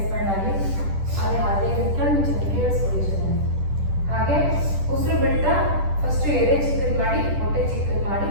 ಆಗಲಿ. ಅದೇ ಕಣ್ಣು ಮುಚ್ಚಿ ಕೇಳಿಸ್ಕೊಳ್ಳಿ ಚೆನ್ನಾಗಿ. ಹಾಗೆ ಉಸಿರು ಬಿಡ್ತಾ ಫಸ್ಟ್ ಎದೆ ಚಿಕ್ಕದು ಮಾಡಿ, ಹೊಟ್ಟೆ ಚಿಕ್ಕದು ಮಾಡಿ,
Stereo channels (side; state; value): left; late; 10 ms